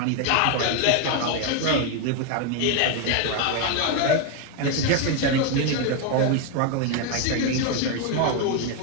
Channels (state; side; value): different; both; correlation 0.01